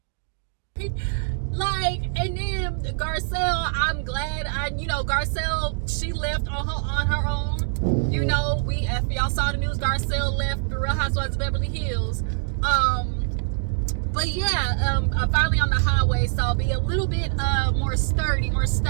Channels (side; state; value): left; silent; digital silence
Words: Like, and then Garcelle, I'm glad, Garcelle, she left on her own. You know, if y'all saw the news, Garcelle left the Real Housewives of Beverly Hills. But yeah, I'm finally on the highway, so I'll be a little bit more sturdy, more